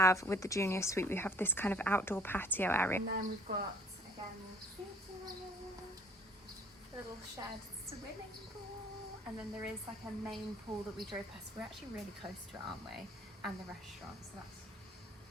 with the junior suite, we have this kind of outdoor patio area. And then we've got, again, little shared swimming pool. And then there is like a main pool that we drove past. We're actually really close to it, aren't we? And the restaurant, so that's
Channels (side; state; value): both; normal; correlation 0.57